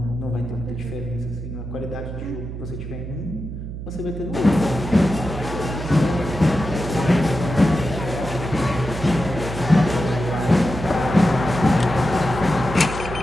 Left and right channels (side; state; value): right; noise; hum, 8 dB below the sound